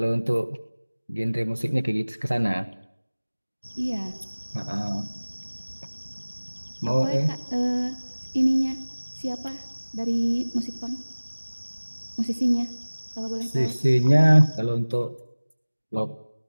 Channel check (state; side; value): inverted; both; correlation -1.00